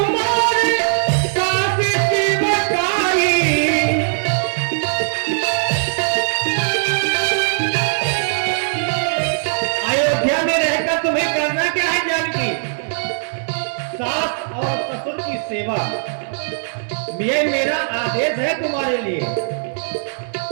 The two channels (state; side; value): silent; left; digital silence